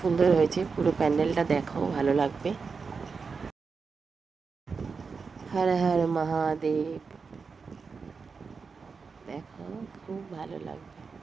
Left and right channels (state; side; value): quieter; left; 5.0 dB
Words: হয়েছে। পুরো প্যান্ডেলটা দেখো, ভালো লাগবে। হর হর মহাদেব, দেখো খুব ভালো লাগবে।